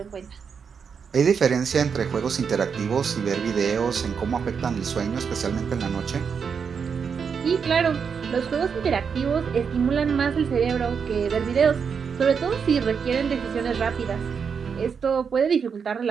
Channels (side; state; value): left; quieter; 6.4 dB